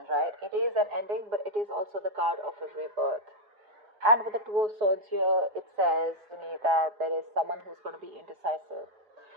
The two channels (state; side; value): late; left; 4.8 ms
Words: right? It is an ending, but it is also the card of a rebirth. And with the Two of Swords here, it says to me that there is someone who's going to be indecisive.